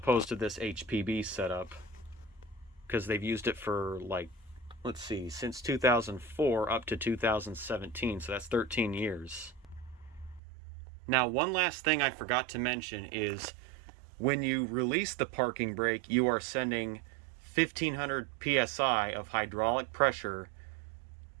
to this HPB setup, because they've used it for, since 2004 up to 2017, so that's 13 years. Now, one last thing I forgot to mention is when you release the parking brake, you are sending 1500 psi of hydraulic pressure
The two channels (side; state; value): left; drops out; at 10.4 s